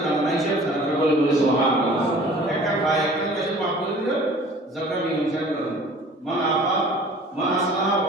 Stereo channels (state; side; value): normal; both; correlation 0.48